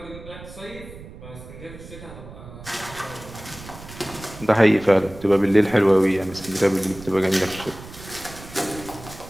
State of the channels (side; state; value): right; noise; rumble, 16 dB below the sound